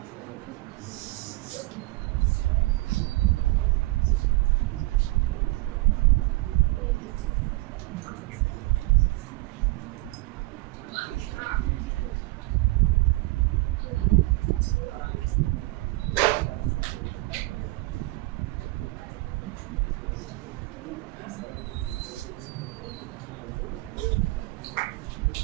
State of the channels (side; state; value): left; quieter; 21.6 dB